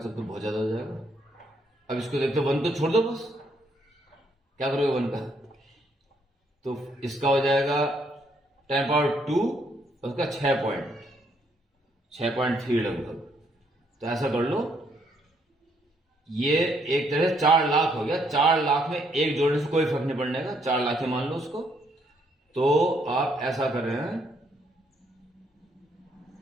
तो बहुत ज्यादा हो जाएगा। अब इसको देखते 1 तो छोड़ दो, बस क्या करोगे 1 का, तो इसका हो जाएगा 10⁻2 और उसका 6.3 लगभग। तो ऐसा कर लो, ये एक तरह से 4 लाख हो गया। 4 लाख में एक जोड़ने से कोई फर्क नहीं पड़ने का, 4 लाख ही मान लो उसको। तो आप ऐसा कर रहे हैं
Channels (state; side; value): normal; both; correlation 0.71